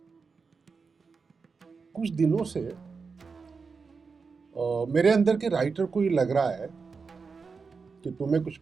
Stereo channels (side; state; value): left; quieter; 4.9 dB